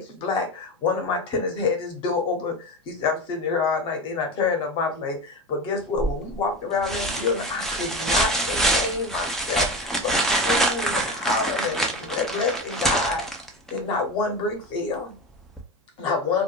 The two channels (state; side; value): normal; both; correlation 0.24